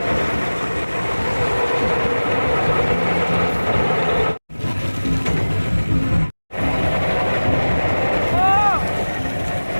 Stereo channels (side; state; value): both; inverted; correlation -1.00